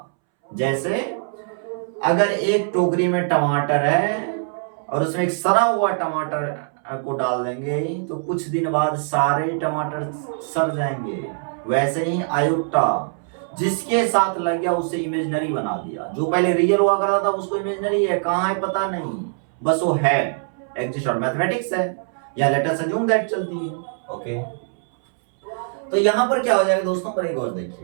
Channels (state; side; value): silent; left; 64 dB below the other